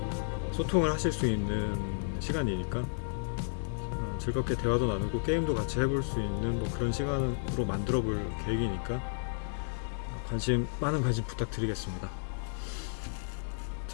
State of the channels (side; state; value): right; silent; digital silence